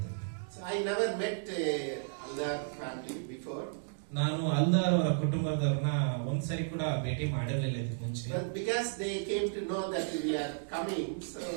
So I never met Aldar family before. ನಾನು ಅಲ್ದಾರ್ ಅವರ ಕುಟುಂಬದವ್ರನ್ನ ಒಂದ್ಸರಿ ಕೂಡ ಭೇಟಿ ಮಾಡಿರಲಿಲ್ಲ ಇದಕ್ಕೆ ಮುಂಚೆ. But because they came to know that we are coming, so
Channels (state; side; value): silent; left; digital silence